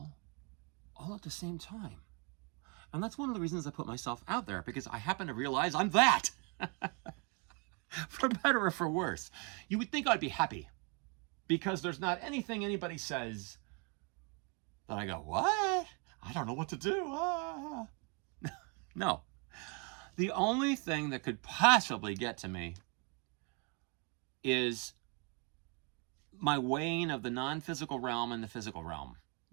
all at the same time. And that's one of the reasons I put myself out there, because I happen to realize I'm that. For better or for worse. You would think I'd be happy because there's not anything anybody says that I go, what? I don't know what to do. No. The only thing that could possibly get to me is my weighing of the non-physical realm and the physical realm,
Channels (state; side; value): quieter; left; 32.0 dB